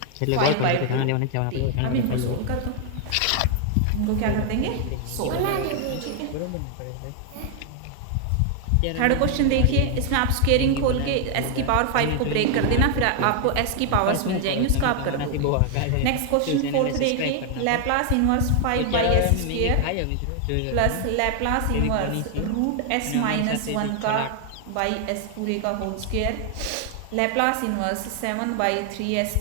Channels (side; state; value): both; different; correlation 0.00